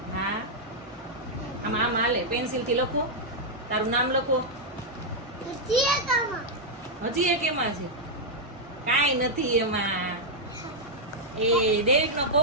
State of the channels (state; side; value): normal; both; correlation -0.04